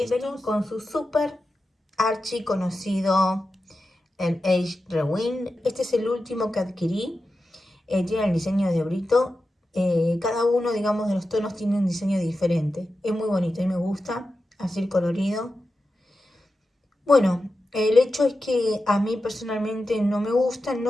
con su super archi conocido, el Age Rewind. Este es el último que adquirí. Tiene el diseño de Brito. Cada uno, digamos, de los tonos tiene un diseño diferente. Es muy bonito y me gusta, así colorido. Bueno, el hecho es que a mí personalmente no me gusta,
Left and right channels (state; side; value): normal; both; correlation 0.91